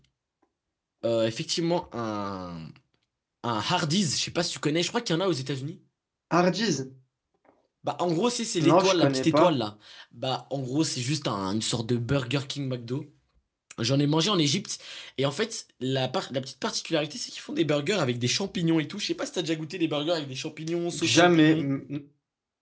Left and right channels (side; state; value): both; identical; correlation 1.00